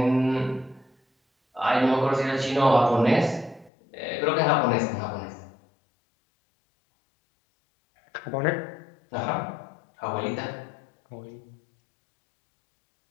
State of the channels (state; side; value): drops out; right; at 3.7 s